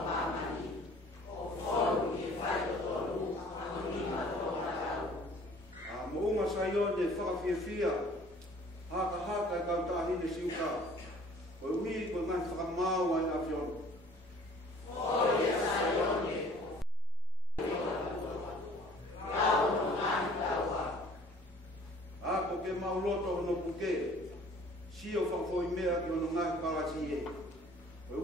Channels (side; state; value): both; normal; correlation 0.53